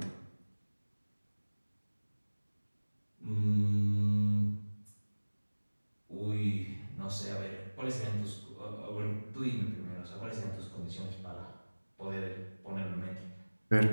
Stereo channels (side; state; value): both; inverted; correlation -1.00